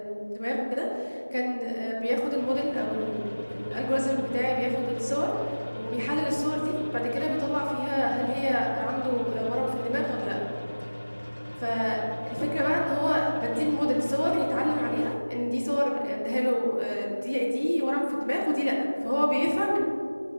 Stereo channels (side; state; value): both; inverted; correlation -1.00